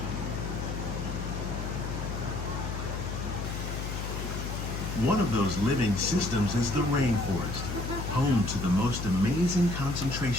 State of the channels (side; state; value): left; noise; hum, 4 dB below the sound